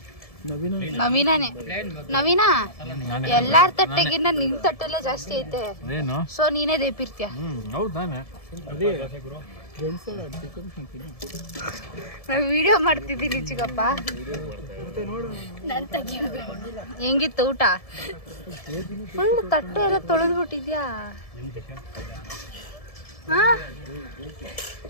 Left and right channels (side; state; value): right; late; 1.7 ms